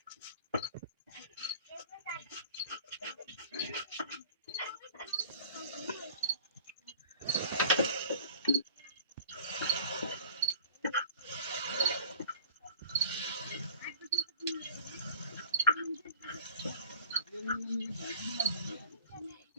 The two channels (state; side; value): inverted; both; correlation -0.49